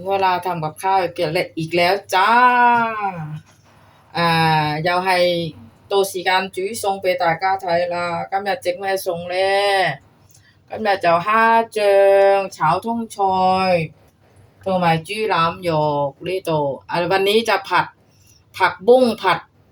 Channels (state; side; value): identical; both; correlation 1.00